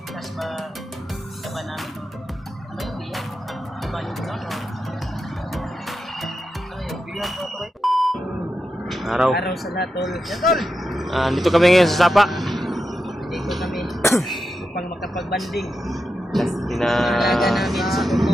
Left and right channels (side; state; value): both; normal; correlation 0.88